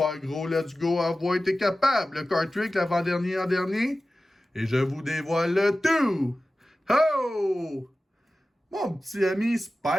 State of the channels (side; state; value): both; normal; correlation 0.95